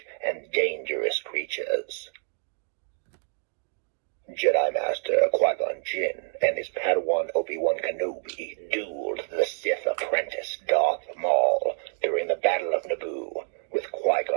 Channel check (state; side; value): silent; left; 56 dB below the other